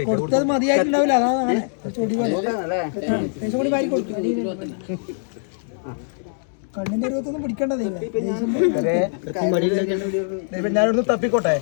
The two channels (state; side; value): silent; right; digital silence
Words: കൊടുത്തത് മതിയായിട്ടുണ്ടാവില്ല അതാണ് ചൊടി കൂടി വാരി കൊടുക്കും കണ്ണിന്റെ രൂപത്തൊന്നും പിടിക്കേണ്ടതേ ഞാനൊന്ന് തപ്പിക്കോട്ടെ